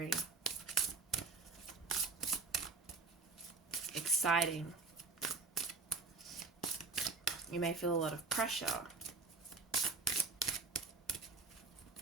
exciting. You may feel a lot of pressure,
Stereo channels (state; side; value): quieter; left; 4.2 dB